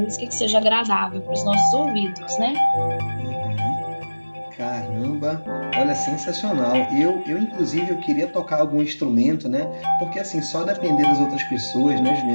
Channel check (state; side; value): inverted; both; correlation -1.00